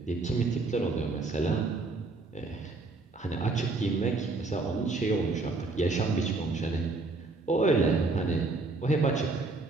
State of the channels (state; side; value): quieter; left; 3.6 dB